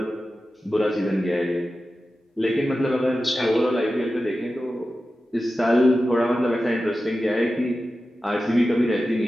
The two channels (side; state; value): both; normal; correlation 0.93